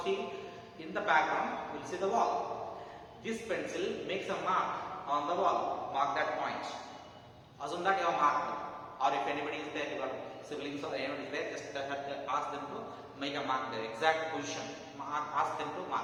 see, in the background you will see the wall. This pencil makes a mark on the wall. Mark that point. Assume that you have marked. Or if anybody is there, your siblings or anyone is there, just ask them to make a mark there. Exact position. Ask them to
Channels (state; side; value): identical; both; correlation 1.00